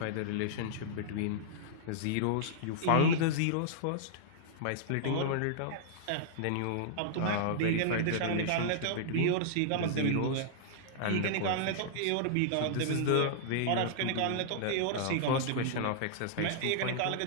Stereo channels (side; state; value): both; different; correlation -0.01